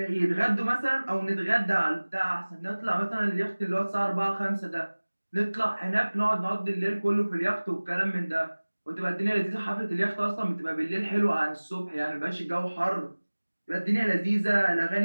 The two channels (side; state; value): both; inverted; correlation -1.00